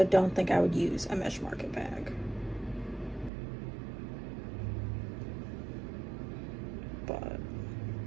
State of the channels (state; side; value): drops out; left; at 3.3 s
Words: don't think I would use a mesh market bag. But